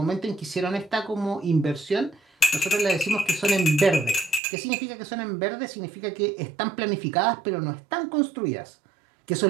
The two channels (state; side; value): drops out; left; at 4.4 s